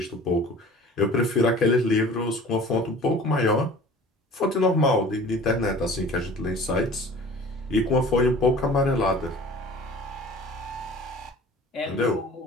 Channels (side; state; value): both; normal; correlation 0.45